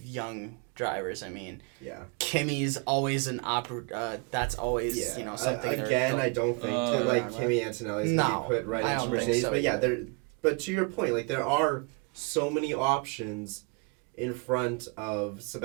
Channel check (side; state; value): left; quieter; 32.4 dB